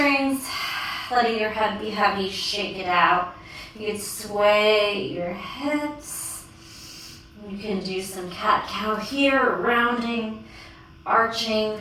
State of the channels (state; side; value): identical; both; correlation 1.00